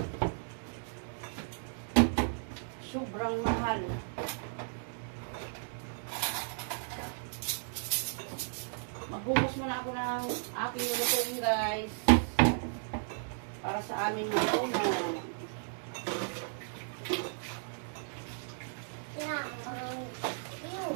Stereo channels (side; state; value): left; silent; digital silence